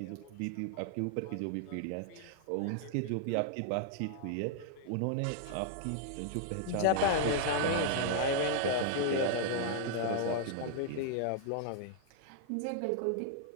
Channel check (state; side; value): different; both; correlation -0.01